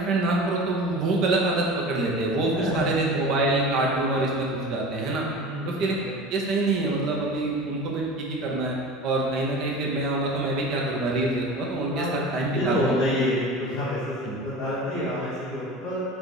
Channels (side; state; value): both; normal; correlation 0.35